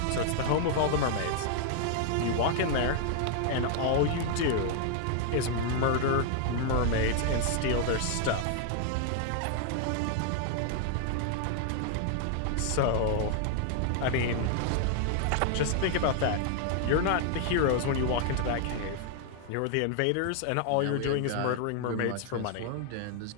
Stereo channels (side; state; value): both; different; correlation 0.00